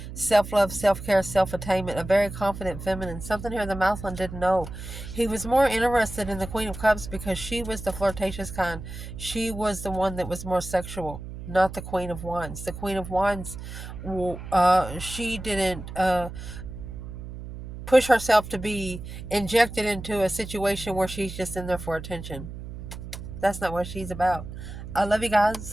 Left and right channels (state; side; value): noise; right; hum, 10 dB below the sound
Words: self-love, self-care, self-attainment. A very confident feminine. Something here the masculine didn't know. He was more interested in the Queen of Cups because she was the flirtatious kind. She was the one that was more sexual. not the Queen of Wands. The Queen of Wands, she didn't push herself to be injected into a situation where she's just in there for attention. That's not what she's about. I love you